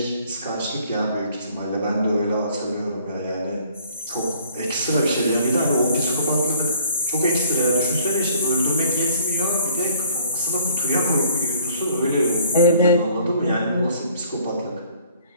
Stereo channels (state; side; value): inverted; both; correlation -0.55